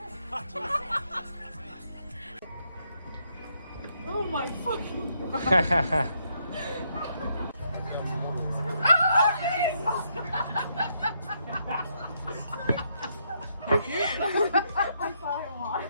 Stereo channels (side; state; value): both; inverted; correlation -0.76